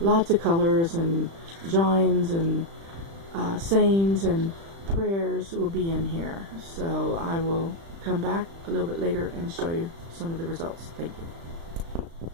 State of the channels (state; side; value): late; left; 36 ms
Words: of colors and drawings and sayings and prayers will be in here. So I will come back a little bit later and show you some of the results. Thank you.